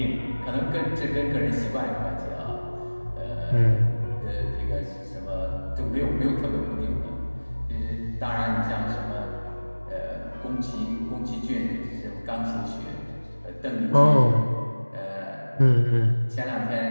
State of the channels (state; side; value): inverted; both; correlation -1.00